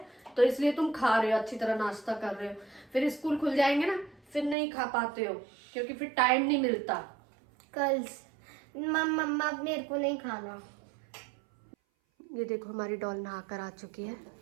तो इसलिए तुम खा रहे हो, अच्छी तरह नाश्ता कर रहे हो। फिर स्कूल खुल जाएंगे ना, फिर नहीं खा पाते हो, क्योंकि फिर टाइम नहीं मिलता। कल मम्मा मेरे को नहीं खाना। ये देखो हमारी डॉल नहा कर आ चुकी है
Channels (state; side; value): drops out; left; at 4.5 s